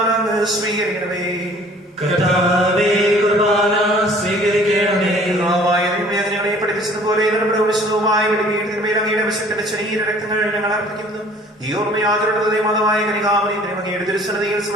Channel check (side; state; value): both; normal; correlation 0.52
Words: അങ്ങ് സ്വീകരിക്കണമേ. കർത്താവേ, കുർബാന സ്വീകരിക്കണമേ. ഞങ്ങളെ പഠിപ്പിച്ചതുപോലെ നമ്മുടെ വിശുദ്ധവുമായ വെളിവീടിന്മേൽ അങ്ങയുടെ വിശുദ്ധന്റെ ശരീര രക്തങ്ങൾ ഞങ്ങൾ അർപ്പിക്കുന്നു. ഈ ഓർമ്മയാത്രയുടെ മതമായ കനികാമനിയും അങ്ങയുടെ ദുരുസന്നതിയിൽ